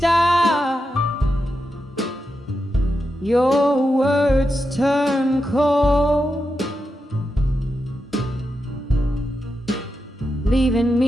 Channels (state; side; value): normal; both; correlation 0.87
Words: your words turn cold, leaving